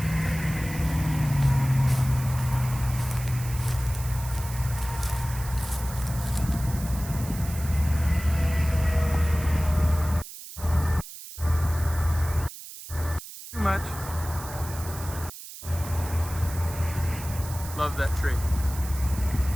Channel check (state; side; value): noise; right; hiss, 13 dB below the sound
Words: Much. Love that tree.